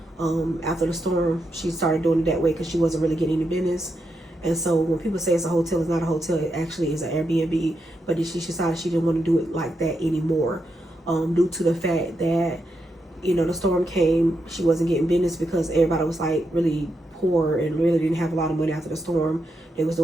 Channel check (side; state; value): both; normal; correlation 0.84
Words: After the storm, she started doing it that way because she wasn't really getting any business. And so when people say it's a hotel, it's not a hotel. It actually is an Airbnb. But then she decided she didn't want to do it like that anymore, due to the fact that, you know, the storm came. She wasn't getting business because everybody was like really poor and really didn't have a lot of money after the storm. They was